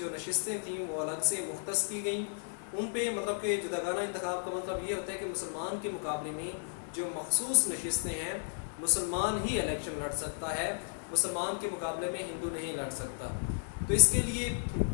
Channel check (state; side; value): silent; right; digital silence